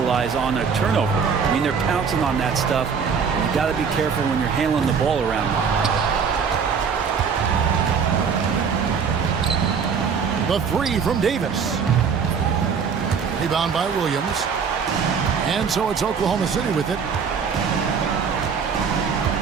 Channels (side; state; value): left; quieter; 6.2 dB